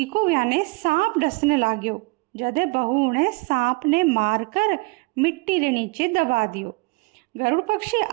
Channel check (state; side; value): quieter; left; 26.3 dB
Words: को याने सांप डसने लाग्यो। जदे बहू ने सांप ने मारकर मिट्टी रे नीचे दबा दियो। गरुड़ पक्षी